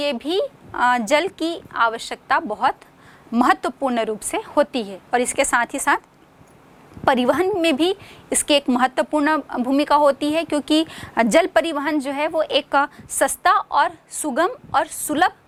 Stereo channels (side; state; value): both; identical; correlation 1.00